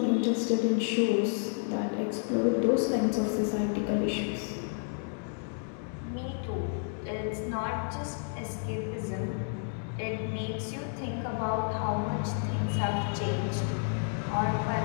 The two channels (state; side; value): silent; right; 56 dB below the other